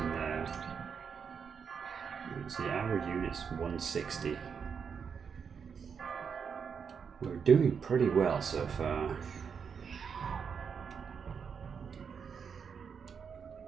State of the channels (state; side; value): quieter; left; 6.5 dB